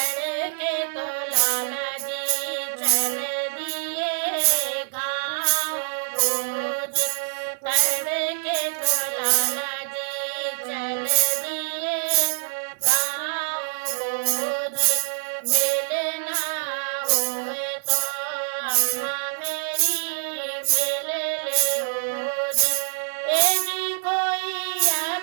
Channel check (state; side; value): silent; left; digital silence